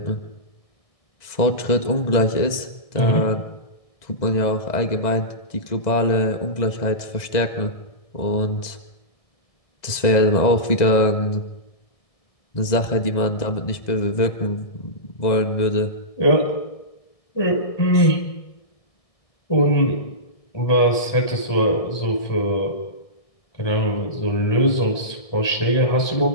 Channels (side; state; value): right; late; 1.6 ms